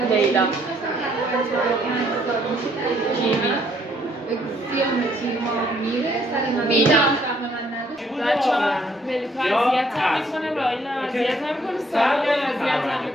بینا بچه ها ملیکا اذیت هم میکنه رایل هم اذیت هم میکنه سامی هم اذیت هم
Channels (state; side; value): normal; both; correlation 0.66